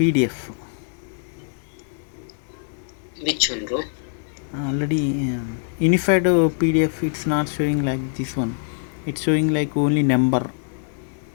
Which one, bro? Already unified PDF. It's not showing like this one. It's showing like only number.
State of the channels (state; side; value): silent; right; 63 dB below the other